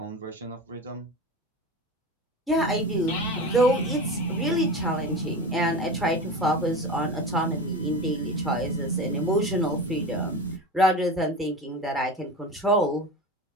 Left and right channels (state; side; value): normal; both; correlation 0.28